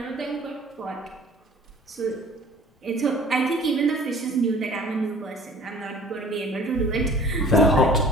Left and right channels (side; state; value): both; normal; correlation 0.48